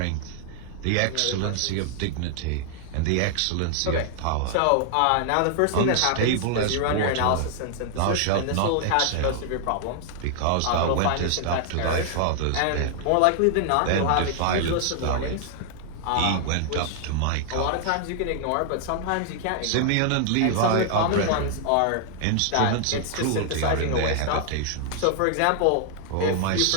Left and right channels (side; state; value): both; different; correlation 0.00